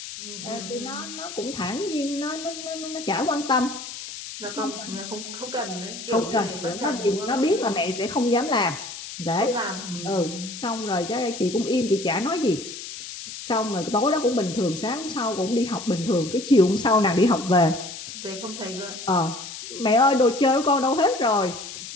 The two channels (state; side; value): noise; left; hiss, 11 dB below the sound